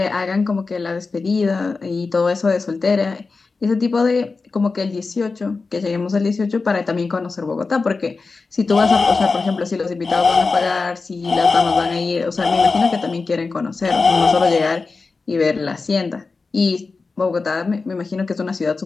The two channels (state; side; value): quieter; right; 4.2 dB